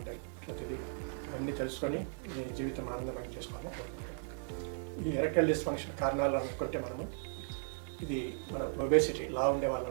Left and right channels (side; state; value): left; silent; 53 dB below the other